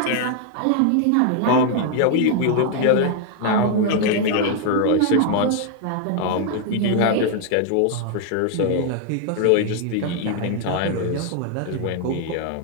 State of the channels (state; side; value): different; both; correlation 0.00